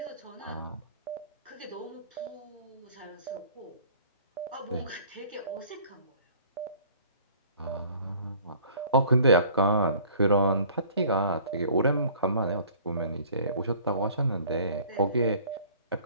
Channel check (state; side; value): inverted; both; correlation -0.52